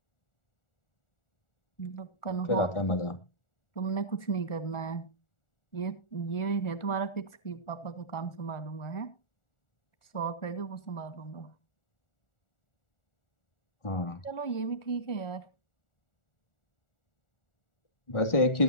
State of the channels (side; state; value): right; late; 1.4 ms